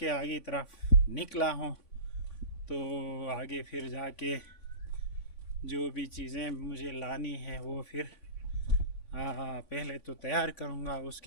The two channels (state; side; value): late; right; 3.5 ms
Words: आगे तरफ निकला हूँ। तो आगे फिर जाके जो भी चीज़ें मुझे लानी है वो फिर पहले तो तैयार करूँगा,